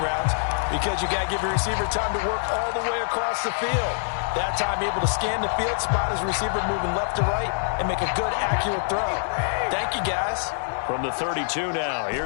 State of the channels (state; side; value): silent; right; 62 dB below the other